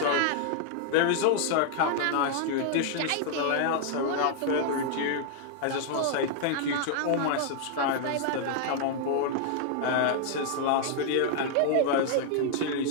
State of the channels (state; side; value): different; both; correlation -0.01